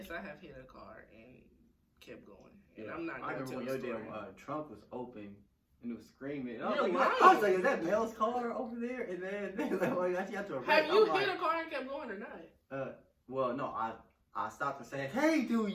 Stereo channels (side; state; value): both; identical; correlation 1.00